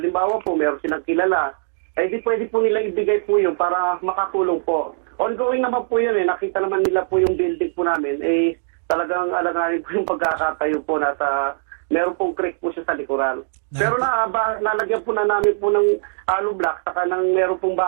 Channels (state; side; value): silent; left; digital silence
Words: po, meron silang kilala, ay di pwede po nilang ibigay po yun para makatulong po. Ongoing naman po yun nakita naman nila po yung building po namin, talagang alanganin po yung pagkakatayo po na meron pong creek po siya sa likuran. Pero nalagyan po na namin po ng hollow block, saka meron pong